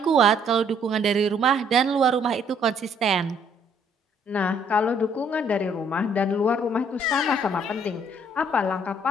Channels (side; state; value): both; normal; correlation 0.64